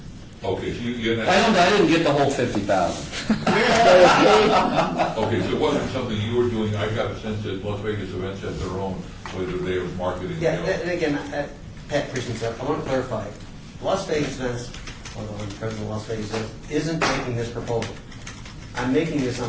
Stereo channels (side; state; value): both; identical; correlation 1.00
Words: Okay, so you I didn't get the whole 50,000. Okay, so it wasn't something you were doing. I got a sense that Las Vegas events had their own, whether they were marketing. Yeah, and again, Pat Christensen, I want to clarify. Las Vegas Events, although I'm president of Las Vegas Events, isn't making this proposal. I'm making this